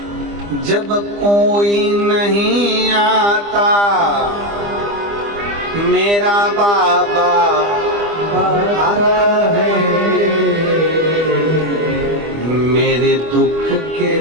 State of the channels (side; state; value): left; late; 25 ms